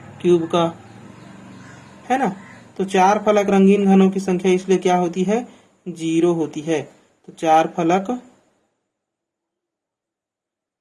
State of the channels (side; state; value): both; identical; correlation 1.00